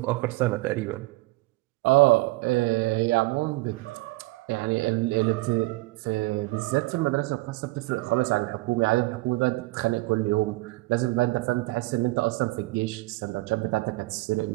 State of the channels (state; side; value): quieter; left; 21.7 dB